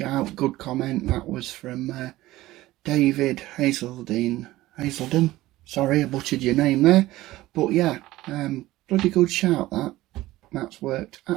good comment. That was from David Hazelden. Sorry, I butchered your name there, but yeah, bloody good shout that. That's worked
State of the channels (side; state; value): left; quieter; 16.9 dB